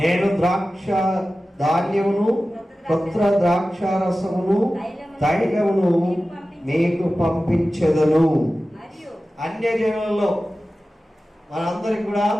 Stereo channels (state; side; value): normal; both; correlation 0.95